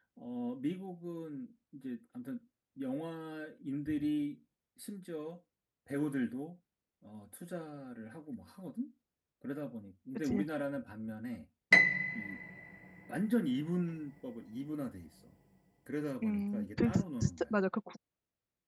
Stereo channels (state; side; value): identical; both; correlation 1.00